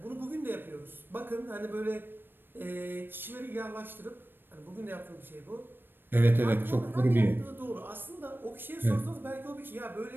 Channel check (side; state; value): left; late; 0.097 ms